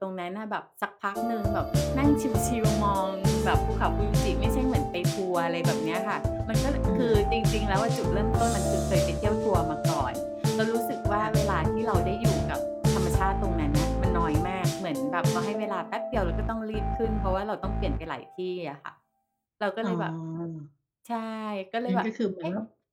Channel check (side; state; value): both; identical; correlation 1.00